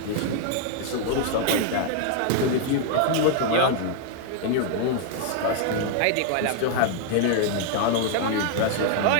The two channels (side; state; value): both; different; correlation 0.00